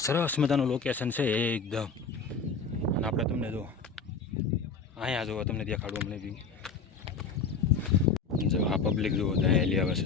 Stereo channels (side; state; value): right; quieter; 4.8 dB